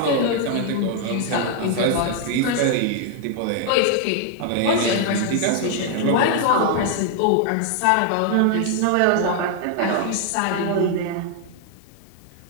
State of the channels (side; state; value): both; different; correlation 0.00